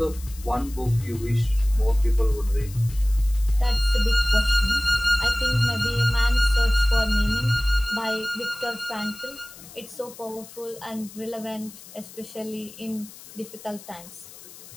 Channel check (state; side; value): noise; left; hiss, 18 dB below the sound